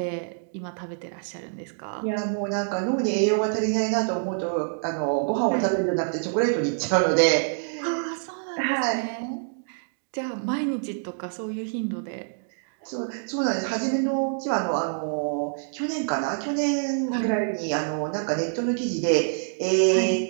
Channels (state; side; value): silent; left; digital silence